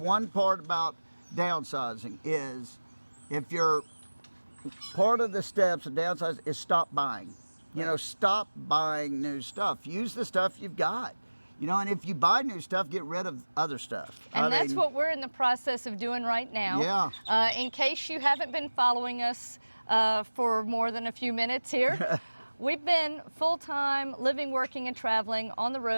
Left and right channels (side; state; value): both; inverted; correlation -1.00